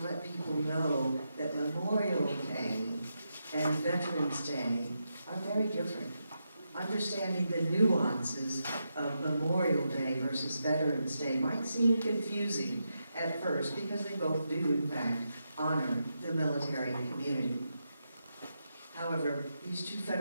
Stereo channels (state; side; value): inverted; both; correlation -0.85